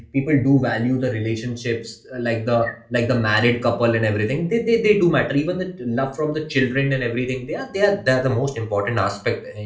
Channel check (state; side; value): identical; both; correlation 1.00